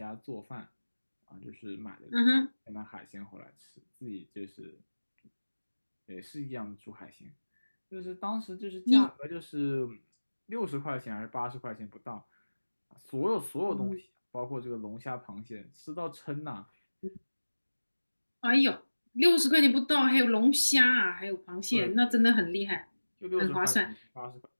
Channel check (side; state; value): both; inverted; correlation -1.00